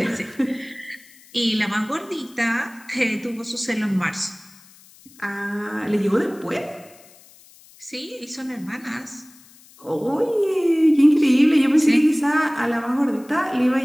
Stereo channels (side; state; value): left; noise; hiss, 25 dB below the sound